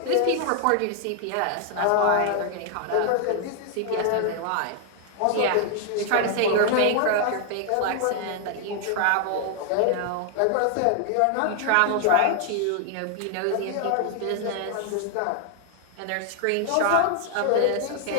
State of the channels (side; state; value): both; different; correlation 0.00